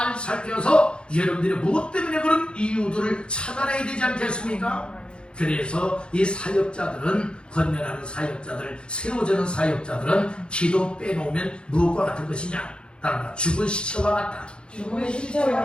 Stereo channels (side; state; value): right; late; 0.054 ms